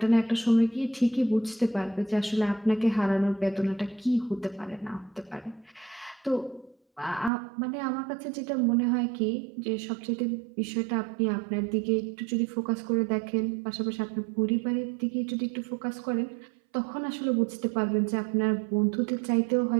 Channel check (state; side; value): drops out; left; at 7.3 s